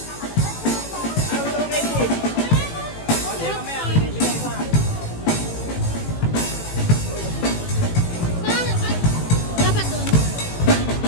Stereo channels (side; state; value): right; late; 18 ms